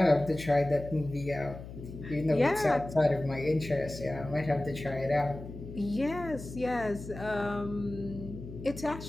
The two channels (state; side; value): noise; left; hum, 12 dB below the sound